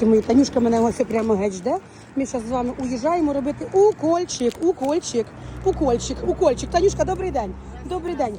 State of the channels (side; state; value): both; identical; correlation 1.00